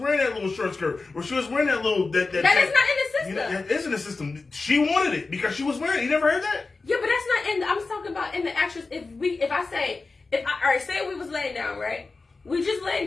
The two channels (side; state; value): right; quieter; 3.9 dB